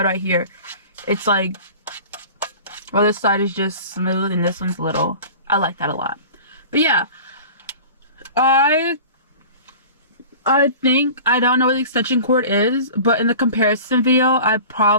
right here, it's like, well, this side is just smooth and this one's little. I like that a lot. But yeah, I think, I don't know what the extension cord is, but in the comparison video, I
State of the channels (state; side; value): inverted; both; correlation -0.39